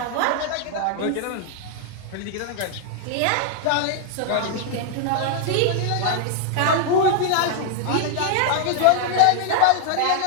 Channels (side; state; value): both; different; correlation 0.00